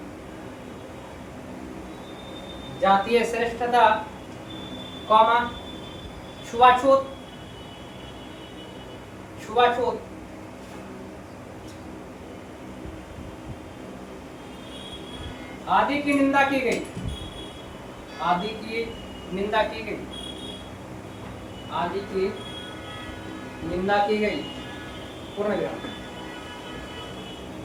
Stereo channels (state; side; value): identical; both; correlation 1.00